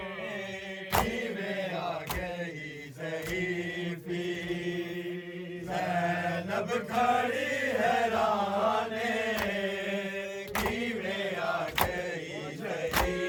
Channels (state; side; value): identical; both; correlation 1.00